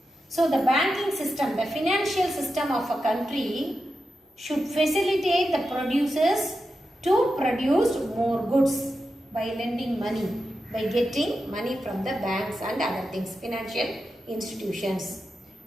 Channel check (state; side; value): normal; both; correlation 0.89